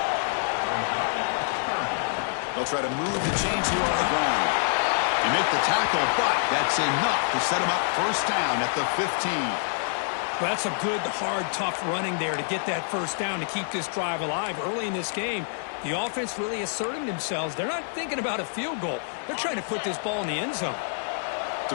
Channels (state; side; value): silent; right; digital silence